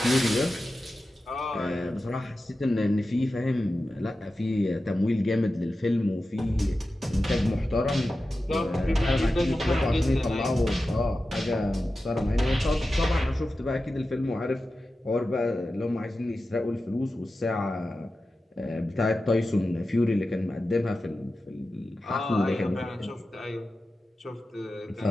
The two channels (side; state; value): both; normal; correlation 0.93